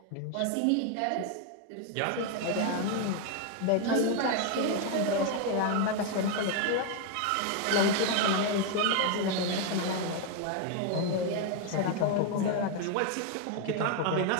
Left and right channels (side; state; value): both; different; correlation 0.01